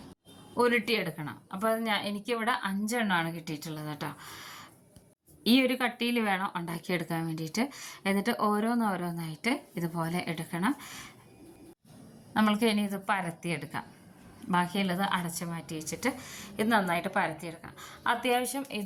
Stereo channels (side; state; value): both; identical; correlation 1.00